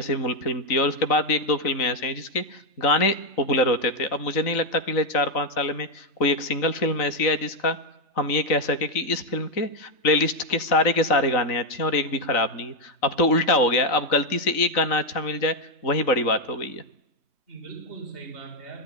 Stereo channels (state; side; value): late; right; 3.9 ms